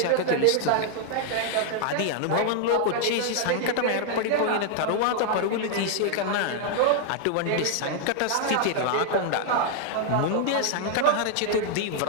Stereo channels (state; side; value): different; both; correlation 0.00